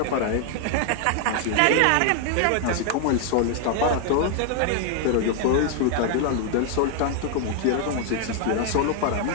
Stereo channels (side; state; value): both; different; correlation 0.00